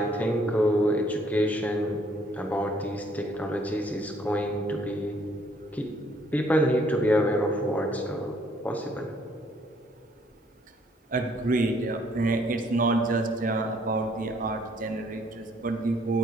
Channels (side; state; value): both; normal; correlation 0.64